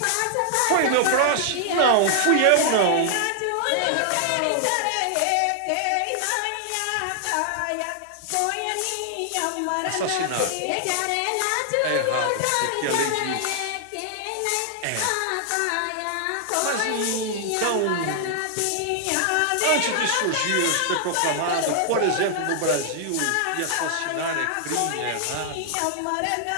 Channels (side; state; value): both; different; correlation -0.01